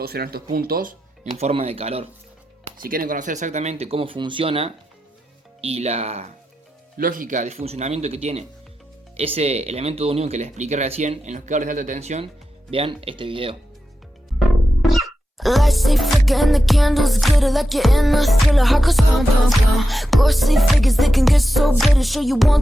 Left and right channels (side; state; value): both; normal; correlation 0.89